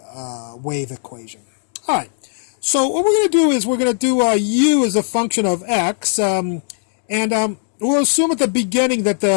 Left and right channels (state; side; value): silent; right; 60 dB below the other